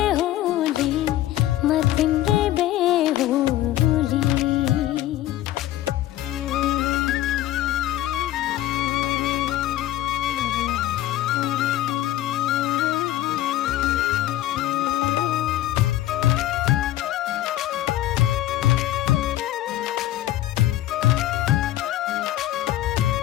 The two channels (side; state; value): right; quieter; 14.3 dB